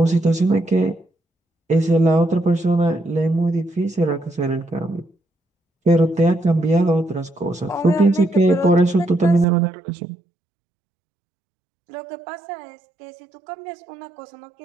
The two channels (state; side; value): drops out; left; at 9.5 s